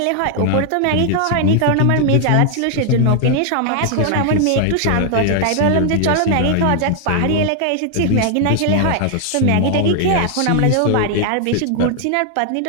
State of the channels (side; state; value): both; different; correlation 0.00